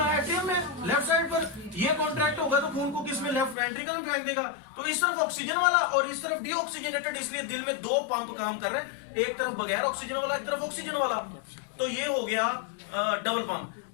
एट्रियम में, लेफ्ट साइड पर ये कॉन्ट्रैक्ट होगा तो खून को किसमें, लेफ्ट वेंट्रिकल में फेंक देगा। तो इस तरफ ऑक्सीजन वाला और इस तरफ डीऑक्सीजनेटेड, इसलिए दिल में 2 पंप काम कर रहे हैं, एक तरफ बगैर ऑक्सीजन वाला, एक तरफ ऑक्सीजन वाला। तो ये हो गया डबल पंप।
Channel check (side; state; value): right; drops out; at 3.6 s